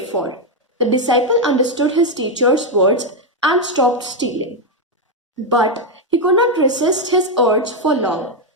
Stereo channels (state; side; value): normal; both; correlation 0.03